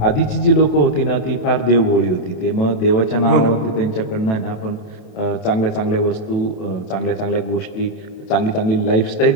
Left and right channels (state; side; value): late; right; 27 ms